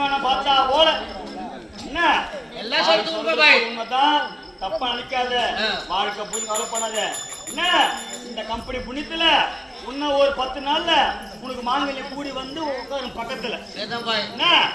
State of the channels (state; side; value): identical; both; correlation 1.00